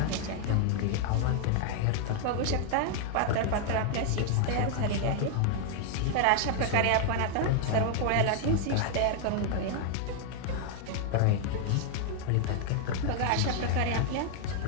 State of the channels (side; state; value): both; different; correlation 0.00